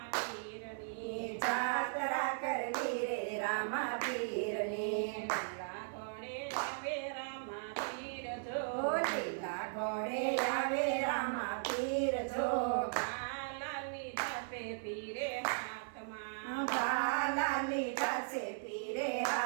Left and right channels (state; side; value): silent; left; 53 dB below the other